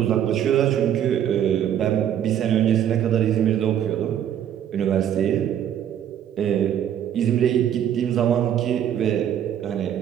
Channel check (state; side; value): quieter; left; 10.0 dB